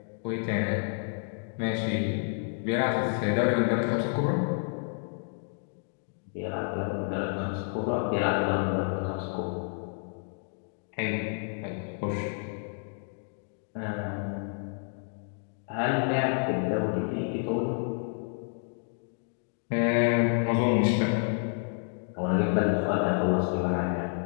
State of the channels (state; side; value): silent; right; 58 dB below the other